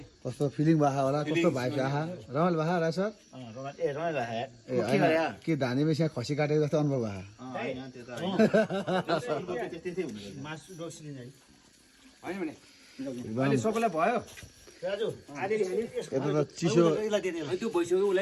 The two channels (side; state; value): both; identical; correlation 1.00